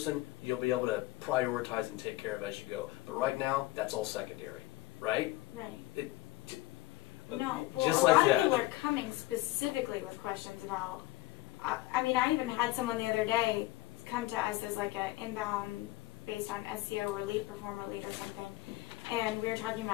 you'll be able to prioritize and take care of as you go. But right now, that's all secondary, right? Right. No, well, just a like lot that. of people are coming specifically with questions about. I mean, I even had someone the other day come to us as like an inbound based on SEO or lead performer lead or something, and we were talking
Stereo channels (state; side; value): quieter; right; 17.8 dB